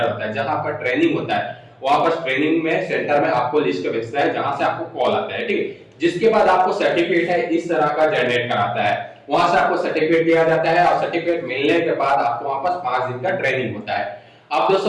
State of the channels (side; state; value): both; identical; correlation 1.00